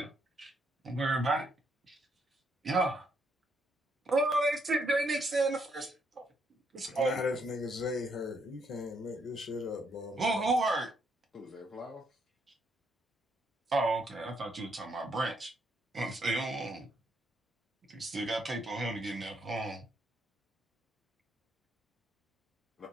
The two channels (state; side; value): normal; both; correlation 0.74